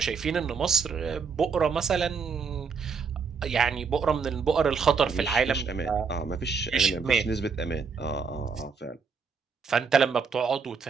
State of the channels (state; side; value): quieter; left; 5.5 dB